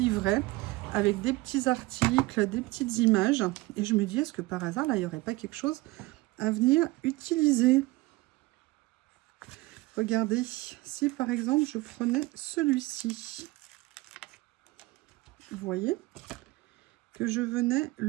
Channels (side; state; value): left; quieter; 21.0 dB